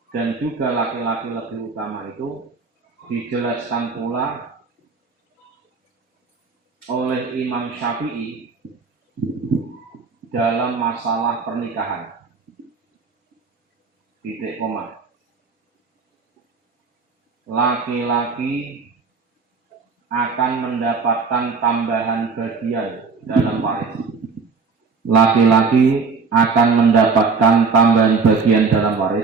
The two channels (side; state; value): left; quieter; 4.8 dB